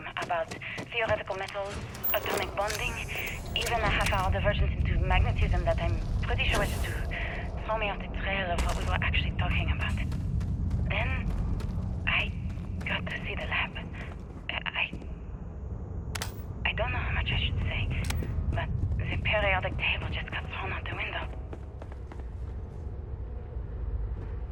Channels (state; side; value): identical; both; correlation 1.00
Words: about theoretical metals, atomic bonding, even a half-hour divergence into magnetism that I'm pretty sure was to throw me off the trail of what we were actually talking about. Then, I got to see the lab. I don't know how much I should say, but the periodic table just got thrown out the window.